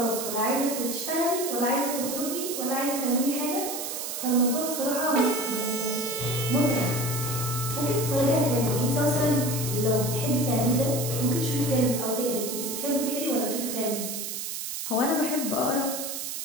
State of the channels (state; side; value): noise; right; hiss, 5 dB below the sound